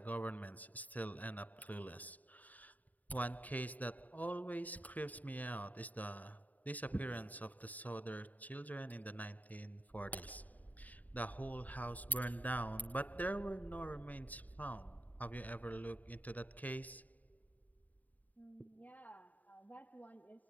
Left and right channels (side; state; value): right; late; 0.076 ms